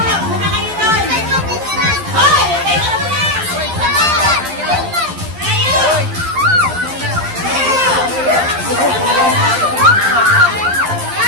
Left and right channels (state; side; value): late; left; 11 ms